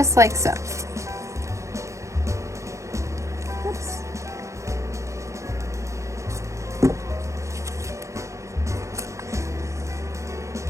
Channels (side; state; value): left; late; 0.15 ms